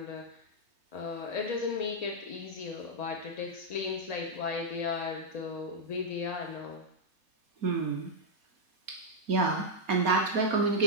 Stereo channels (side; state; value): left; late; 4.2 ms